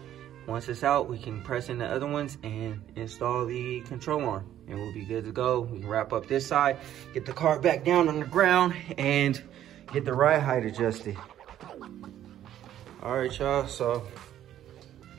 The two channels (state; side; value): quieter; left; 11.6 dB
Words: Once it's out, we can press in the other ones and install the control arm, and we'll be good to go. We can wrap up this side, get the car back down on the ground, and get the ride height adjusted. All right, y'all, so